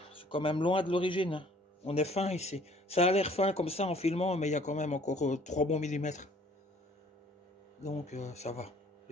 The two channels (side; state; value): both; normal; correlation 0.56